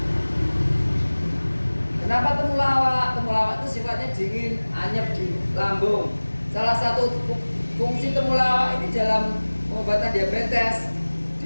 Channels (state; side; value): inverted; both; correlation -1.00